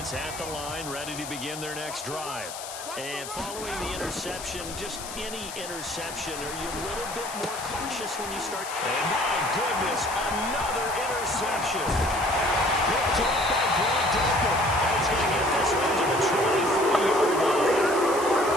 at the line, ready to begin their next drive. And following the interception, just any interception, are you a little bit more cautious when you start? And my goodness, another interception. Picked up by Grant Delpit. And he's going to get this one to the 23-yard line.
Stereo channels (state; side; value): noise; left; hiss, 10 dB below the sound